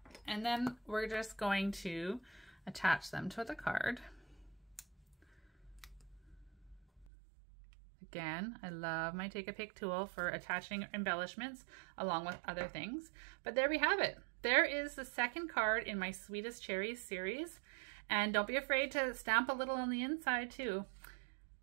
And then we're just going to attach them to the card. Again, I love my Take a Pick tool for attaching embellishments along with other things. But there we have it. There is the second card in my Sweetest Cherries series. And don't be afraid to stamp a little on the inside too.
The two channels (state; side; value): drops out; left; at 7.1 s